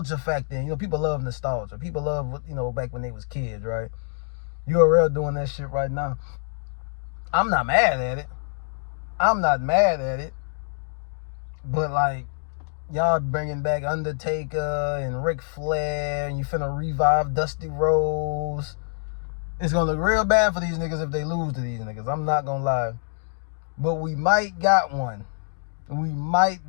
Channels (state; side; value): silent; right; digital silence